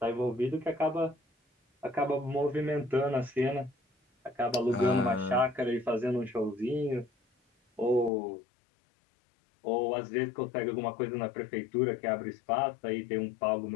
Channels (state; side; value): drops out; right; at 8.1 s